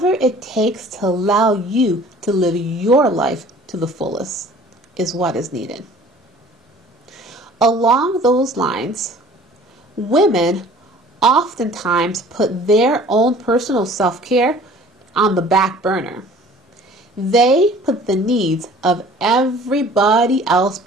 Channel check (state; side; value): normal; both; correlation 0.49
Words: it takes to allow you to live your life to the fullest is what is needed. Along those lines, women oftentimes put their own personal self-care on the back burner. They put the needs of everybody else